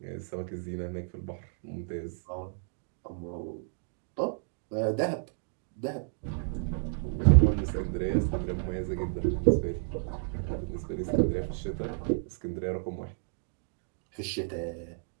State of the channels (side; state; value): left; silent; digital silence